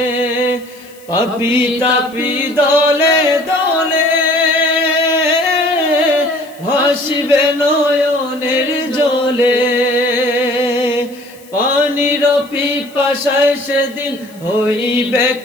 পাপি তাপি দলে দলে ভাসিবে নয়নের জলে পানির পিপাসায় সেদিন হইবে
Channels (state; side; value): noise; left; hiss, 25 dB below the sound